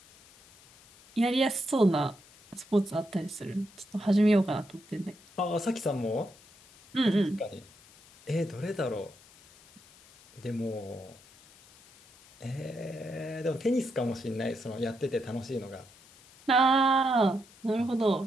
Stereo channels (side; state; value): left; noise; hiss, 25 dB below the sound